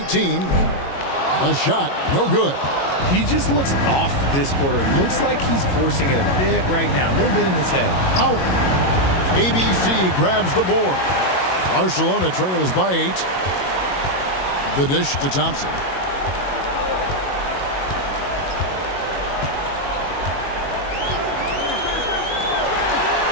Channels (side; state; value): right; late; 22 ms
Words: A shot, no good. He just looks off this quarter. Looks like he's forcing it a bit right now, a little bit in his head. Howard. ABC grabs the board. Barcelona trails by 8. The dish to Thompson.